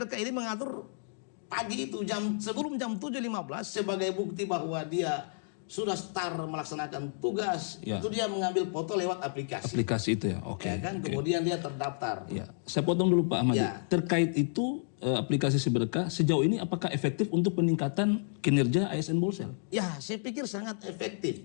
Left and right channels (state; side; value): silent; right; digital silence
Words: ini mengatur pagi itu sebelum jam 7.15 sebagai bukti bahwa dia sudah start melaksanakan tugas. Itu dia mengambil foto lewat aplikasi. Aplikasi itu ya, oke. Ya kan, kemudian dia terdaftar. Ya, saya potong dulu Pak Ahmad. Terkait itu aplikasi Siberkah sejauh ini apakah efektif untuk peningkatan kinerja ASN Bolsel? Ya, saya pikir sangat